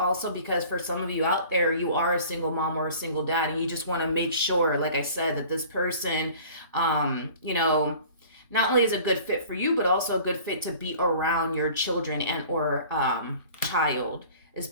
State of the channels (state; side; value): inverted; both; correlation -0.46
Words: because for some of you out there, you are a single mom or a single dad, and you just want to make sure, like I said, that this person, you know, not only is a good fit for you, but also a good fit to be around your children and or child, is